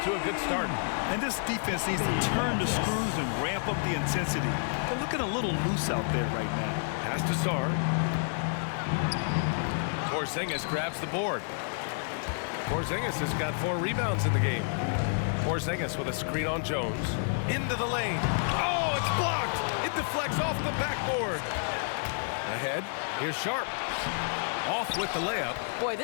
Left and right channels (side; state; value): right; silent; digital silence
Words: to a good start. And this defense needs to turn the screws and ramp up the intensity. They're looking a little loose out there right now. Pass to Sarr. Porzingis grabs the board. Porzingis has got 4 rebounds in the game. Porzingis with a screen on Jones. Into the lane. Oh, it's blocked. It deflects off the backboard. Ahead, here's Sharp. Off with the layup. Boy,